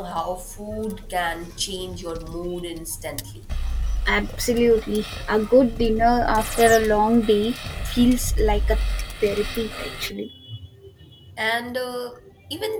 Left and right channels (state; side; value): identical; both; correlation 1.00